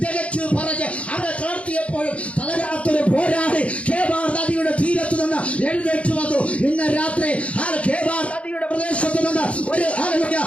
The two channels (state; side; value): late; right; 0.063 ms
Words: തികച്ചു പറഞ്ഞ് അവരെ തളർത്തിയപ്പോഴും തളരാത്തൊരു പോരാടി കേബാർ നദിയുടെ തീരത്ത് നിന്ന് എഴുന്നേറ്റ് വന്നു. ഇന്ന് രാത്രി കേബാർ നദിയുടെ പ്രദേശത്ത് നിന്ന് ഒരു